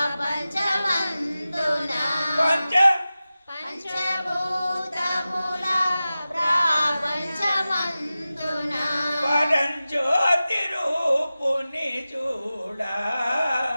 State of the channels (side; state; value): both; inverted; correlation -0.95